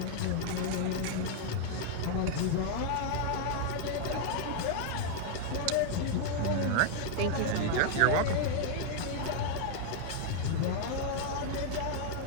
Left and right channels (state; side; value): different; both; correlation 0.00